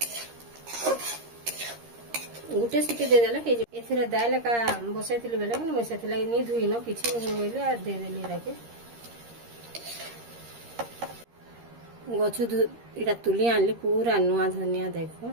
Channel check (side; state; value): left; late; 13 ms